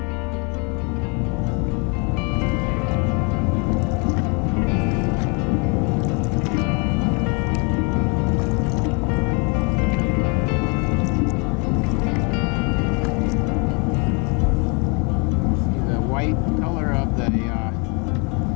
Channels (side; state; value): right; quieter; 33.3 dB